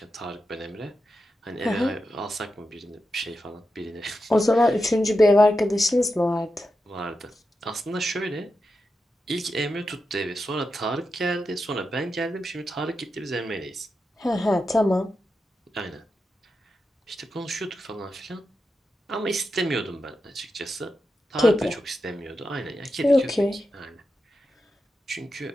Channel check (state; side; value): normal; both; correlation 0.89